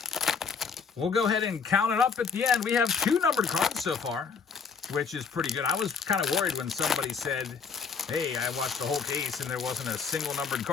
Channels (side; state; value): right; quieter; 5.7 dB